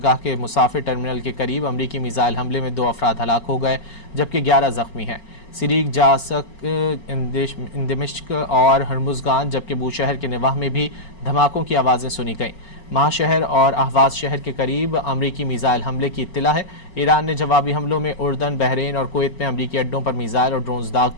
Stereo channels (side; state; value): right; late; 4.4 ms